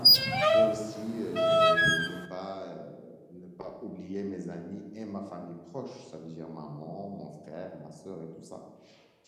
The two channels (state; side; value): identical; both; correlation 1.00